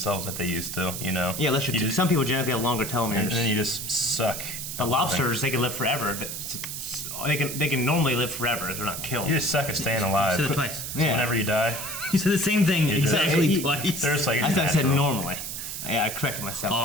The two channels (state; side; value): noise; right; hiss, 6 dB below the sound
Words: like they used to. You know. Yeah, unless some people genetically have longer telomeres. And then you just suck. The lobsters, they can live forever. They can normally live forever if they're not killed. You just suck at staying alive. You said it twice. So whenever you die, You said the same thing exactly twice. there's like I it's thought I said natural. normally. Yeah, I corrected myself. Oh,